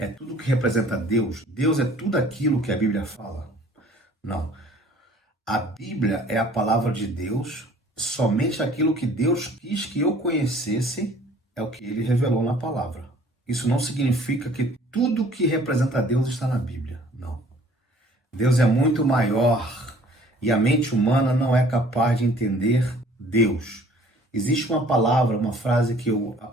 tudo que representa Deus. Deus é tudo aquilo que a Bíblia fala? Não. A Bíblia é a palavra de Deus, somente aquilo que Deus quis que eu conhecesse é o que ele revelou na palavra. Isso não significa que tudo que representa Deus está na Bíblia. Não. Deus é muito maior e a mente humana não é capaz de entender Deus. Existe uma palavra, uma frase que eu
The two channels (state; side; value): normal; both; correlation 0.54